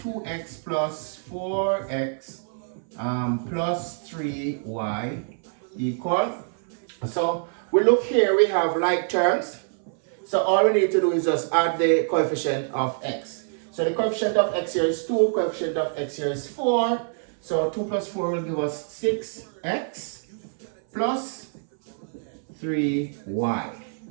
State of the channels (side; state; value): left; silent; 61 dB below the other